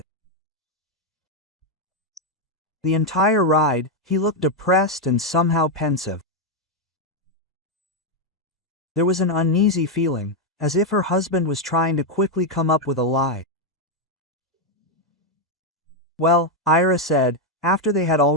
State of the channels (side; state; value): both; normal; correlation 0.02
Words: The entire ride, he looked depressed and somehow pensive. There was an uneasy feeling, as if her husband was trying to quickly come up with a lie. "Well," Ira said, after they had